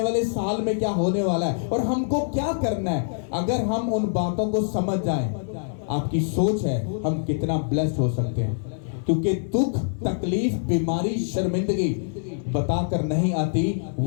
वाले साल में क्या होने वाला है और हमको क्या करना है, अगर हम उन बातों को समझ जाएं, आपकी सोच है हम कितना ब्लेस्ड हो सकते हैं। क्योंकि दुख, तकलीफ, बीमारी, शर्मिंदगी बताकर नहीं आती,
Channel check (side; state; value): right; silent; digital silence